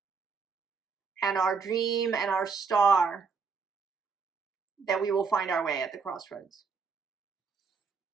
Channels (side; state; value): left; quieter; 5.1 dB